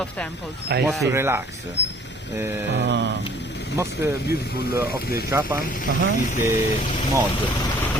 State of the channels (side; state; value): both; normal; correlation 0.55